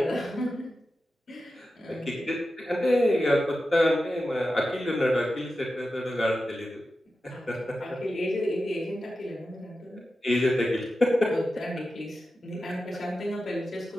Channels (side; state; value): both; normal; correlation 0.92